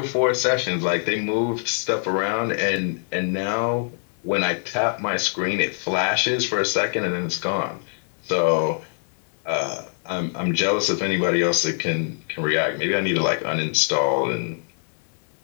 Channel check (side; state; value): right; silent; digital silence